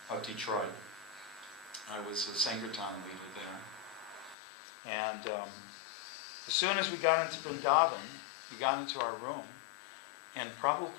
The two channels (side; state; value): right; drops out; at 4.4 s